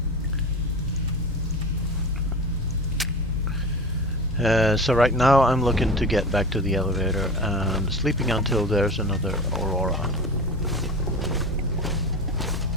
So right now I'm looking to get back to the elevator and sleeping until there's another Aurora.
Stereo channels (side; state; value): both; normal; correlation 0.30